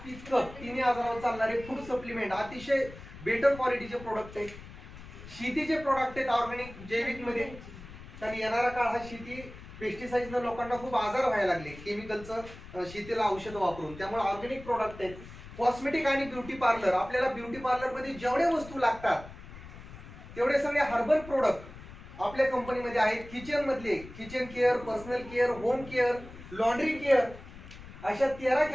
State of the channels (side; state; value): left; noise; rumble, 15 dB below the sound